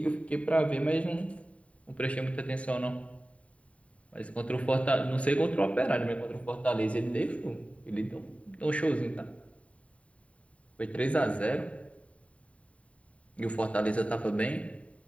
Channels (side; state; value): right; late; 0.065 ms